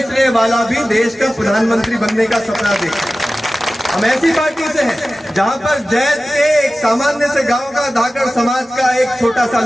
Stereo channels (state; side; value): normal; both; correlation 0.96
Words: वाला भी देश का प्रधानमंत्री बनने का सपना देखता है। हम ऐसी पार्टी से हैं जहां पर जैत के एक सामान्य से गांव का धाकड़ समाज का एक छोटा सा